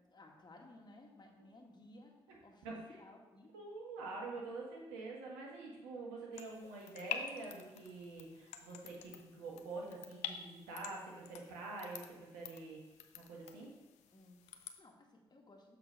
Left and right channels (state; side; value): normal; both; correlation 0.39